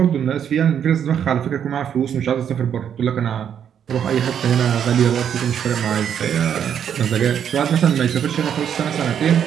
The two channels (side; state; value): left; quieter; 8.7 dB